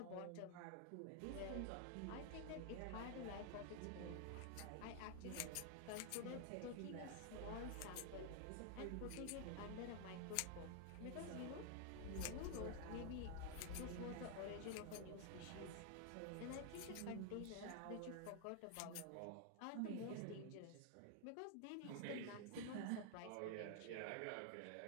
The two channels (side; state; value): both; different; correlation 0.00